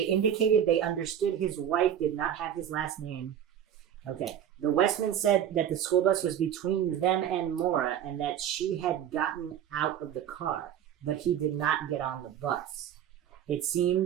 they understood his wife did not have his last name. Okay. The Westman said that the school bus was between them and Maura and that she had gotten out of the car, but he did not get on the bus. It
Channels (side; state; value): left; quieter; 9.8 dB